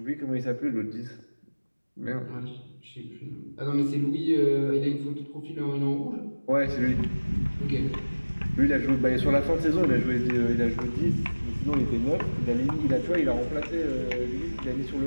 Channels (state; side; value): inverted; both; correlation -1.00